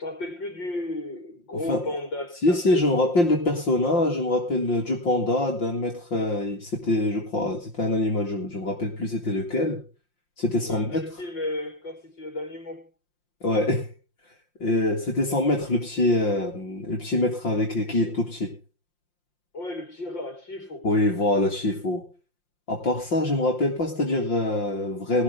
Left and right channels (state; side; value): late; right; 5.7 ms